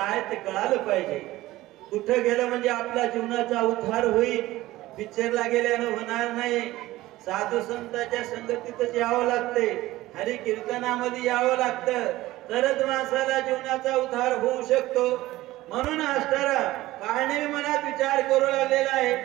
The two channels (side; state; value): left; quieter; 17.2 dB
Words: ते कळालं पाहिजे. कुठं गेलं म्हणजे आपल्या जीवनाचा उद्धार होईल. पिक्चरला गेल्यानं होणार नाही. साधू संतांच्या संगतीतच यावं लागते, हरी कीर्तनामध्ये यावं लागतं, तरच माणसाला जीवनाचा उद्धार होऊ शकतो. म्हणून असणारा काळने मनात विचार करू लागलेला आहे,